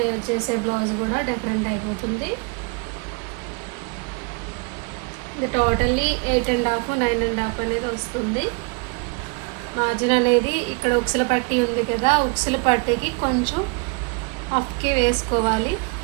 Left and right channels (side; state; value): left; quieter; 31.7 dB